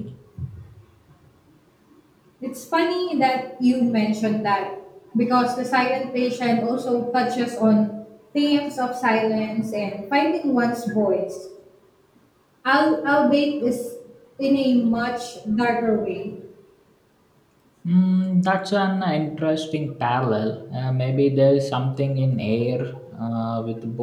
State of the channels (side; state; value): both; identical; correlation 1.00